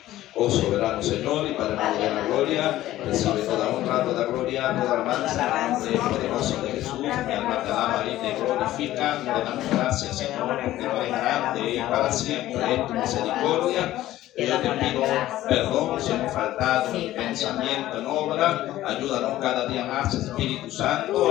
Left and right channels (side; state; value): right; quieter; 14.7 dB